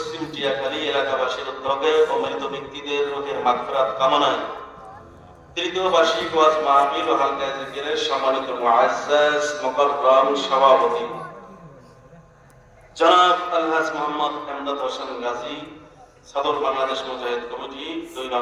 টিয়াখালী এলাকাবাসীর উদ্যোগে অমৃত ব্যক্তিদের রোগের মাগফিরাত কামনায় তৃতীয় বার্ষিক ওয়াজ মাহফিল ও হালকা জিকিরের সম্মানিত মুআজ্জাজ মুকাররম সভাপতি জনাব আলহাজ মোহাম্মদ এমদাদ হোসেন গাজী, সদর বাংলাদেশ মুজাহিদ কমিটি 2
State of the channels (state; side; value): identical; both; correlation 1.00